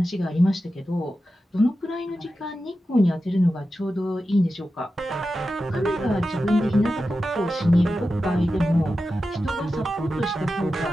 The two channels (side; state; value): both; normal; correlation 0.92